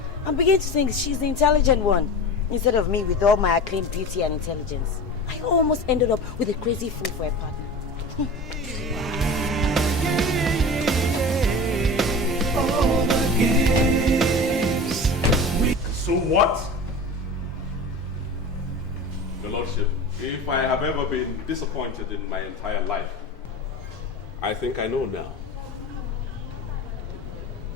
I'm beginning to think she's the intelligent one, instead of me with all my acclaimed beauty and intelligence. I almost ended up with a crazy fool for a partner. So what? Your Lordship, if I have ever been disappointed in my entire life, I think I know now.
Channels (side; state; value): both; normal; correlation 0.32